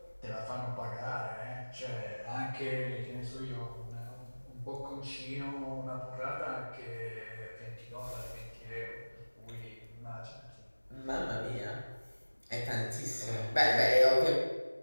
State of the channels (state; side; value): inverted; both; correlation -1.00